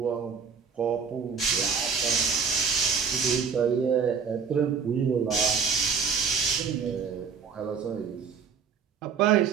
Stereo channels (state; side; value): quieter; left; 6.1 dB